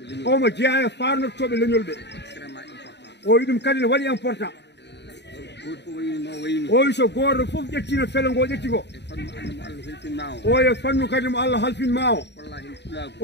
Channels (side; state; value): right; late; 0.50 ms